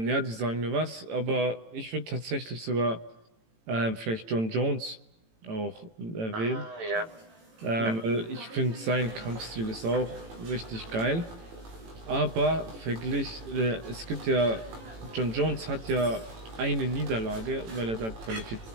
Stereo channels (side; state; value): left; late; 18 ms